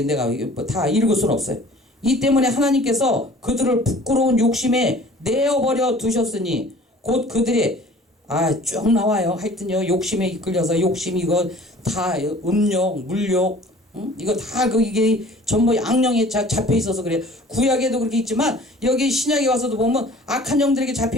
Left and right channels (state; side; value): normal; both; correlation 0.49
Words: 내가 다 읽을 수는 없어요. 이 때문에 하나님께서 그들을 부끄러운 욕심에 내어버려 두셨으니 곧 그들의 쭉 나와요. 하여튼요 욕심에 이끌려서 욕심 이거 다 음욕 물욕 이거 다 이게 전부 악령에 잡혀 있어서 그래. 구약에도 그렇게 있지만 여기 신약에 와서도 보면 악한 영들에게